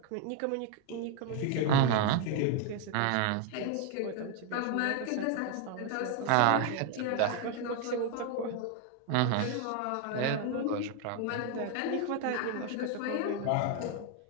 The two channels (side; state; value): both; different; correlation 0.01